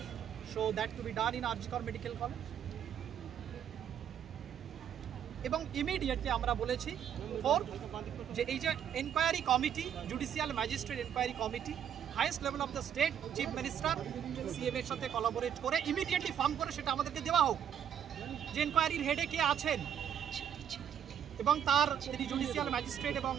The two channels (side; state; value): left; quieter; 9.1 dB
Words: so that to be done in Arjikar Medical College. এবং immediately আমরা বলেছি যে এই যে enquiry committee, judicial magistrate enquiry committee highest level of the state chief minister CM এর সাথে collaborate করে immediately form করে সেটা আমাদেরকে দেওয়া হোক যে এনকোয়ারির হেডে কে আছেন এবং তার যিনি জুডিশিয়াল ম্যাজিস্ট্রেট, এবং